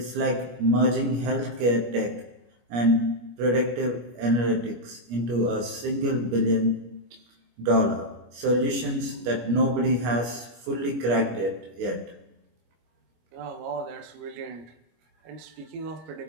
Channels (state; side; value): late; left; 25 ms